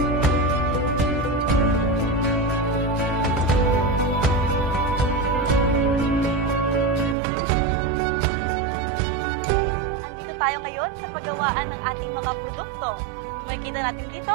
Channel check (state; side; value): drops out; left; at 7.2 s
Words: Tayo ngayon sa paggawaan ng ating mga produkto. Makikita natin dito